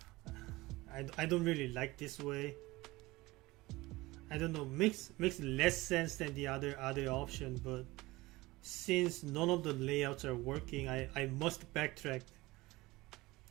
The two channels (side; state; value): left; quieter; 20.4 dB